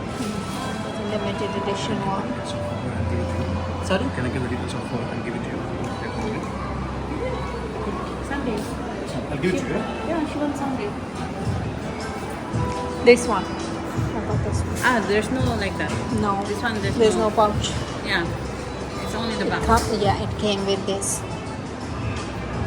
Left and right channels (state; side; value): identical; both; correlation 1.00